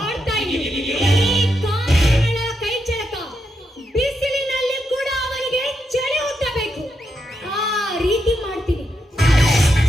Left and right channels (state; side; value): normal; both; correlation 0.83